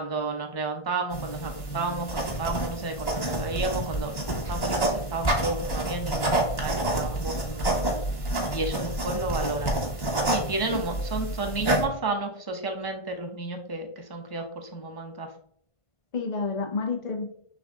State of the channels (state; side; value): late; right; 1.1 ms